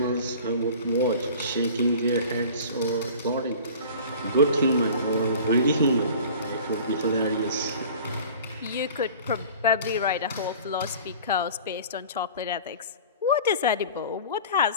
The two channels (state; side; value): inverted; both; correlation -0.42